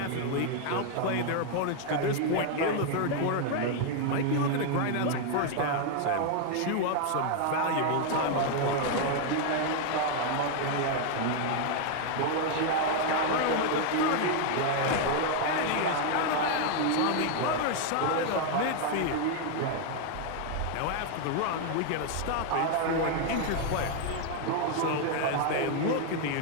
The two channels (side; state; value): both; different; correlation 0.00